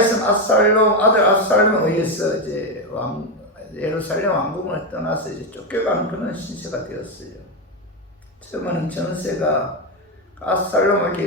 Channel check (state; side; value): normal; both; correlation 0.09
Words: 아들 압살롬에 의해서 이제 예루살렘 왕궁을 떠나서 이제 쫓겨가는 그런 신세가 되었어요. 처음에는 전세가